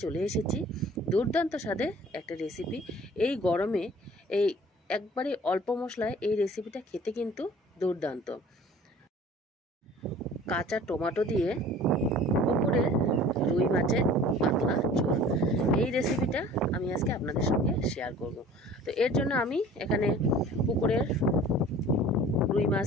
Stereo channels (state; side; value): normal; both; correlation 0.47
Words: চলে এসেছি। দুর্দান্ত স্বাদে একটা রেসিপি। এই গরমে এই একবারে অল্প মশলায় এই রেসিপিটা খেতে কিন্তু দুর্দান্ত। কাঁচা টমেটো দিয়ে পুকুরের রুই মাছের পাতলা ঝোল, এই রেসিপিটা আমি আজকে আপনাদের সঙ্গে শেয়ার করব। তো এর জন্য আমি এখানে পুকুরের রুই